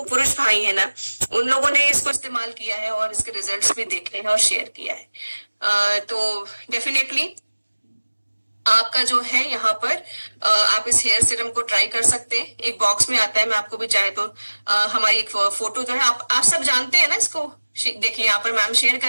पुरुष भाई है ना, उन लोगों ने इसको इस्तेमाल किया है और इसके रिजल्ट्स भी देखे हैं और शेयर किया है। तो डेफिनेटली आपका जो है यहाँ पर आप इस हेयर सीरम को ट्राई कर सकते हैं। एक बॉक्स में आता है, मैं आपको भी चाहे तो हमारी एक फोटो जो है, आप सब जानते हैं ना इसको। देखिए यहाँ पर मैम शेयर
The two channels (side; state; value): both; inverted; correlation -1.00